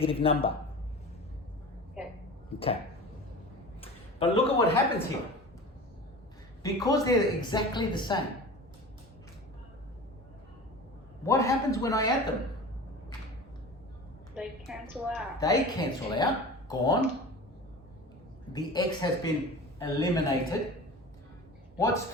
number. Okay. Okay. But look at what happens here. Because they're exactly the same, what happens when I add them? They cancel out. They cancel out, gone. The x has been eliminated. What's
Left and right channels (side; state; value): both; normal; correlation 0.35